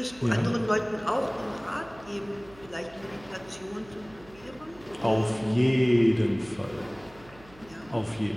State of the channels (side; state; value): right; noise; hum, 23 dB below the sound